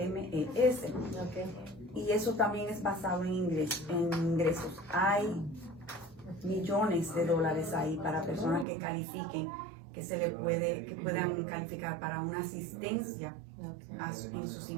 Y eso también es basado en ingresos. Hay millones de dólares ahí para personas que califiquen, que puedan calificar para una asistencia en sus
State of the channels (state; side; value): drops out; left; at 8.7 s